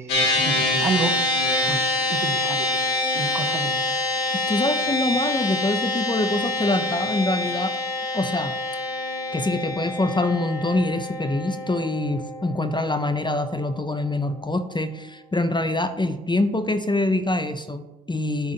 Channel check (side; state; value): both; normal; correlation 0.51